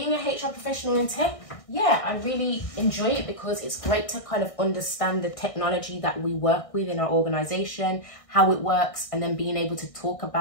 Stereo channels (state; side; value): late; right; 1.6 ms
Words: a HR professional in tech, yeah, I really enjoy it because it's great to kind of understand the technology that we work with in our organisation, how it works, and then being able to talk